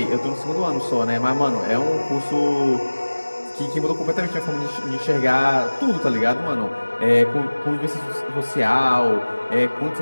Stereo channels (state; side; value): inverted; both; correlation -1.00